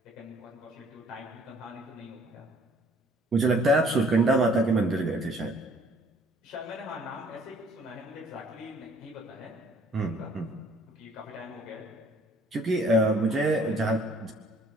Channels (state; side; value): normal; both; correlation 0.58